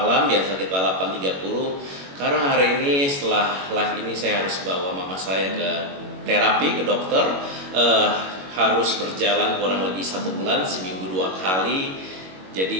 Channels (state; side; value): late; left; 21 ms